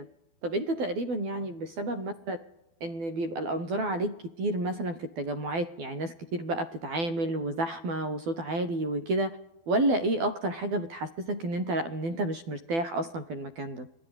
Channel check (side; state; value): left; late; 12 ms